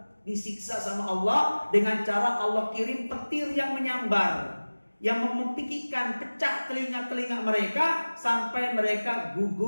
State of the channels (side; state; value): both; inverted; correlation -1.00